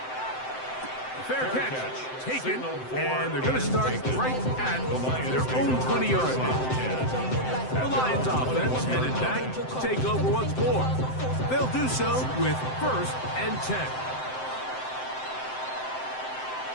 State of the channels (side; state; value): right; late; 7.7 ms